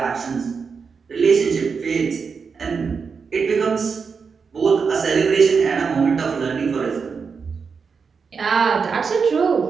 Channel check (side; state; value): left; quieter; 5.5 dB